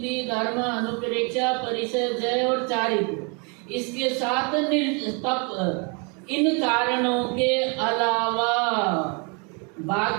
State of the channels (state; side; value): quieter; left; 34.1 dB